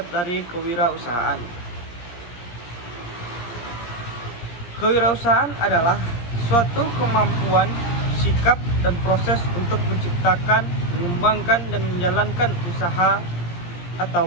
dari kewirausahaan. Kewirausahaan adalah suatu kemampuan, sikap, dan proses untuk menciptakan, mengembangkan, dan menjalankan usaha atau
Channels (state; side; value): late; right; 17 ms